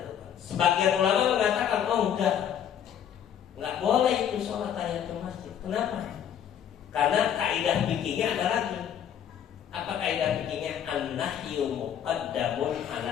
Sebagian ulama mengatakan, oh enggak boleh itu sholat tahiyatul masjid. Kenapa? Karena kaidah fikihnya ada lagi. Apa kaidah fikihnya? An-nahyu muqaddamun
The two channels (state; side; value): quieter; right; 9.3 dB